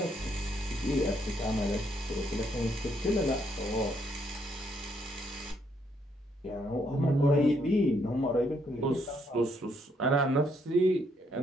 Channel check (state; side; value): normal; both; correlation 0.72